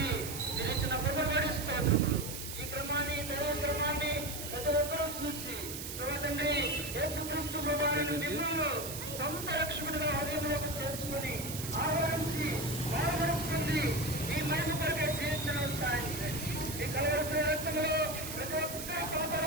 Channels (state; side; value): noise; right; hiss, 7 dB below the sound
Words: మీరు ఇచ్చిన కృపబడి స్తోత్రములు. ఈ క్రమాన్ని దైవ క్రమాన్ని ప్రతి ఒక్కరూ చూసి ప్రభా తండ్రి యేసుక్రీస్తు ప్రభావాన్ని మిమ్మల్ని సొంత రక్షకుడిగా హృదయంలోకి చేర్చుకొని ఆహ్వానించి బాధపరుస్తుంది ఈ మహిమ కొరకే జీవించడం సాధించండి. ఈ కలవరసిన రక్తంలో ప్రతి ఒక్క